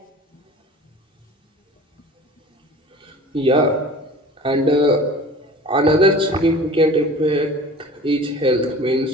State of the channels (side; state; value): both; normal; correlation 0.42